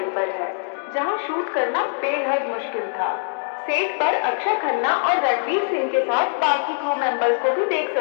पर है, जहां शूट करना बेहद मुश्किल था। सेट पर अक्षय खन्ना और रणवीर सिंह के साथ बाकी क्रू मेंबर्स को भी देख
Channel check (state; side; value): silent; right; digital silence